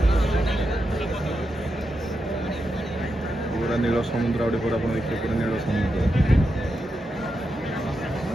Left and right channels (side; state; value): both; normal; correlation 0.86